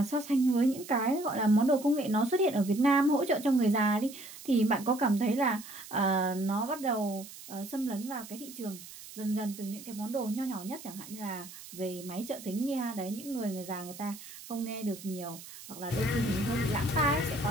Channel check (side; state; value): right; noise; hiss, 15 dB below the sound